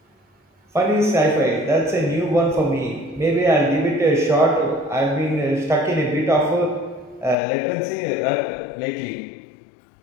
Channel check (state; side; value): drops out; right; at 7.4 s